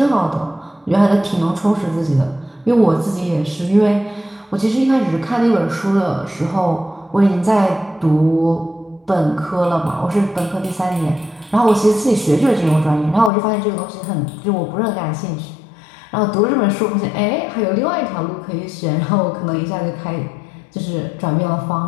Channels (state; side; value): drops out; right; at 13.3 s